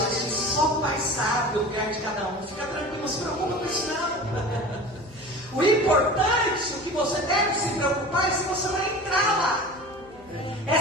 disse: só o Pai sabe o lugar de cada um. Fica tranquilo, não se preocupa com isso não. O importante, o que você deve se preocupar é se você vai entrar lá. É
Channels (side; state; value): left; noise; hum, 26 dB below the sound